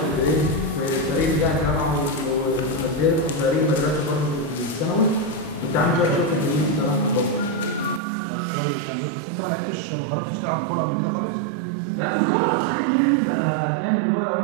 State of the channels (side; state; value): left; drops out; at 8.0 s